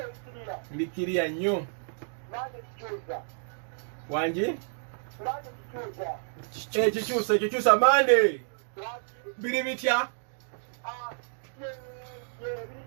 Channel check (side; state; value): left; silent; digital silence